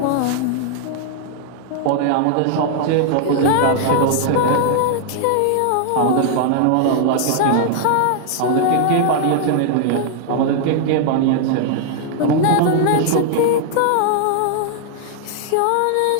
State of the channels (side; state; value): both; different; correlation -0.01